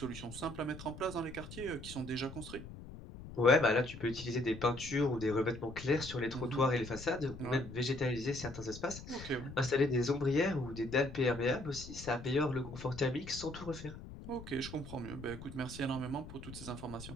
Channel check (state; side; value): noise; left; rumble, 13 dB below the sound